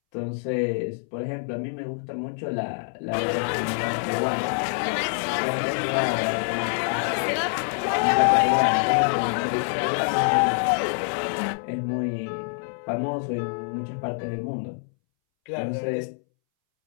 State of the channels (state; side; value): silent; right; 61 dB below the other